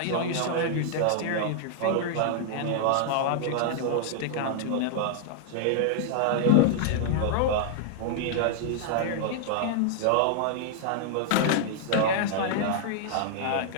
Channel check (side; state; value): both; different; correlation -0.01